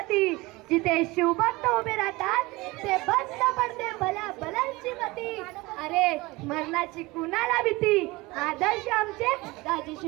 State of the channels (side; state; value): left; quieter; 22.1 dB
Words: जिथे शिवभक्त उभे राहतात ते बंद पडते भल्या भल्यांची मती. अरे मरणाची कुणाला भीती. आदर्श आमचे